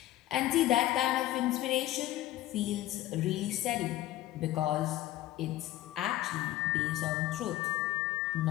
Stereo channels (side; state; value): right; quieter; 15.1 dB